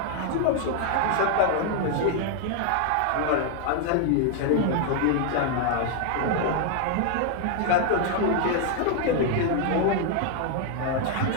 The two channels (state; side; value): different; both; correlation 0.00